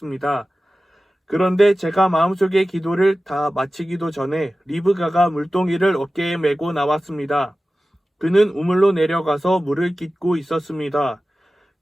그런데 제가 마음속의 기도를 다 마치기도 전에 리브가가 물동이를 어깨에 메고 나왔습니다. 그는 우물로 내려가서 물을 깃고 있었습니다.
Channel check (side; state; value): both; normal; correlation 0.95